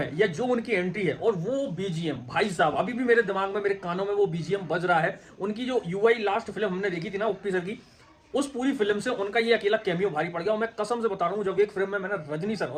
या जो उनकी एंट्री है और वो बीजीएम, भाई साहब अभी भी मेरे दिमाग में, मेरे कानों में वो बीजीएम बज रहा है। उनकी जो यूआई लास्ट फिल्म हमने देखी थी ना उप्पी सर की, उस पूरी फिल्म से उनका ये अकेला कैमियो भारी पड़ गया। और मैं कसम से बता रहा हूं, जब एक फिल्म में मैंने रजनी सर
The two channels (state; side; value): identical; both; correlation 1.00